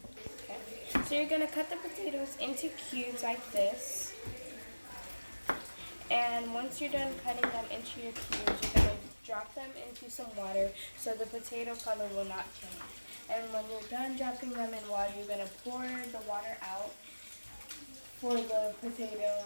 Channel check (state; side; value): inverted; both; correlation -1.00